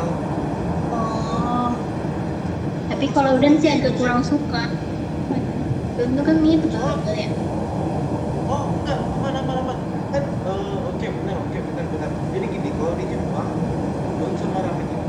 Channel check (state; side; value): identical; both; correlation 1.00